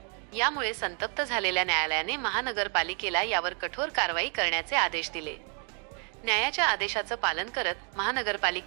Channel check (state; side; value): quieter; left; 39.1 dB